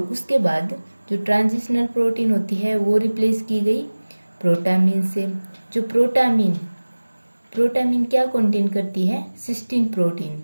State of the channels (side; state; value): both; inverted; correlation -1.00